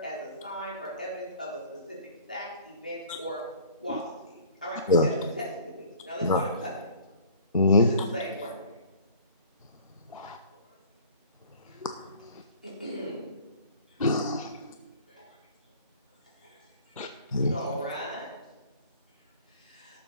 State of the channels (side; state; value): both; inverted; correlation -0.48